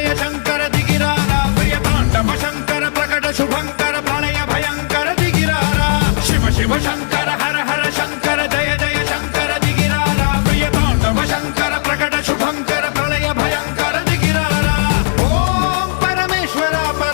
शंकर दिगिरारा प्रिय तांडव शंकर प्रकट शुभंकर प्रलय भयंकर दिगिरारा शिव शिव शंकर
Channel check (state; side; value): silent; right; digital silence